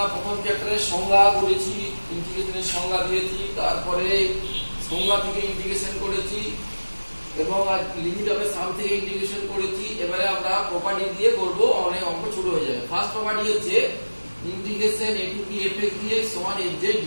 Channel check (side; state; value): both; inverted; correlation -1.00